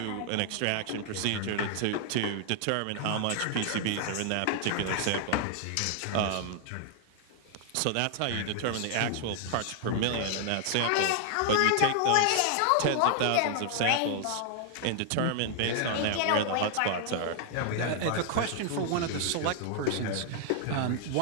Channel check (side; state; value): both; different; correlation 0.00